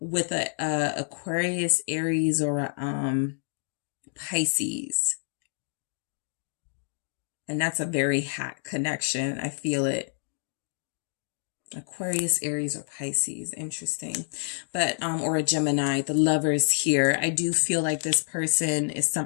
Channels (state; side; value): silent; right; 59 dB below the other